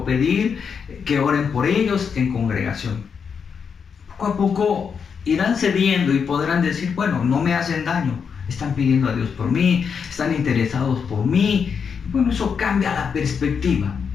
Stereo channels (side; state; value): right; quieter; 6.4 dB